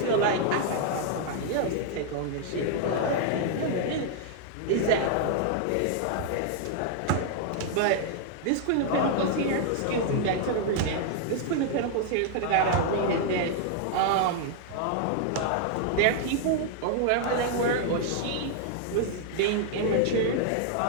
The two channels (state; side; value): different; both; correlation 0.00